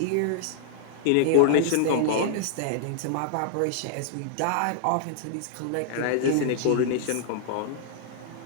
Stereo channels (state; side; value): different; both; correlation -0.01